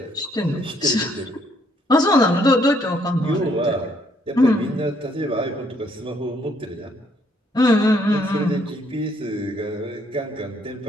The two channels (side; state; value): both; normal; correlation 0.68